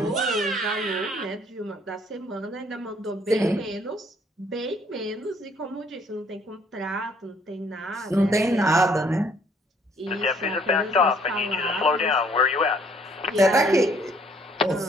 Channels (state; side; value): normal; both; correlation 0.63